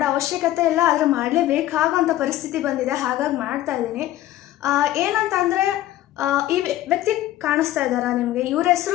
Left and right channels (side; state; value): right; quieter; 14.3 dB